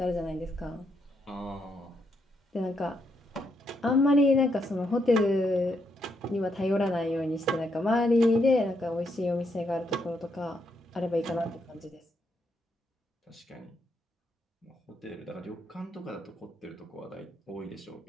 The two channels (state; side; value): normal; both; correlation 0.77